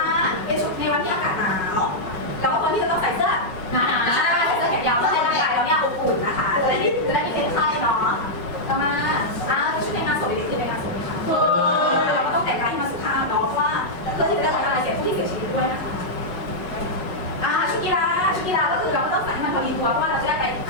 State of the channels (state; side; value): late; right; 5.4 ms